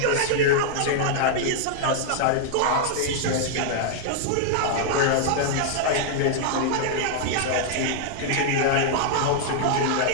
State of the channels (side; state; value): both; different; correlation -0.01